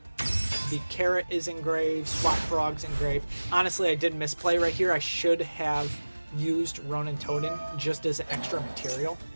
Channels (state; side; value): inverted; both; correlation -1.00